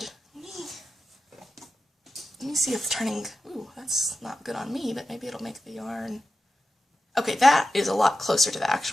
Let me see if turning, ooh, that's not good on me, but maybe it'll make the yarn. Okay, that is a lot closer to the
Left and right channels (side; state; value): both; normal; correlation 0.91